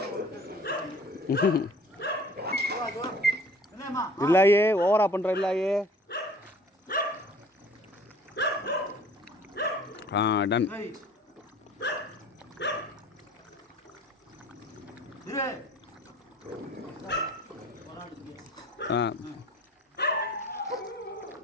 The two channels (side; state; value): both; normal; correlation 0.49